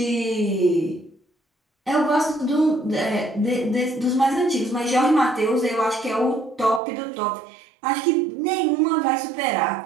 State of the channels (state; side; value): drops out; left; at 6.8 s